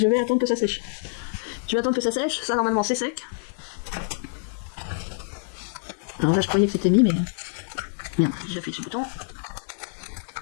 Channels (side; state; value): right; silent; 61 dB below the other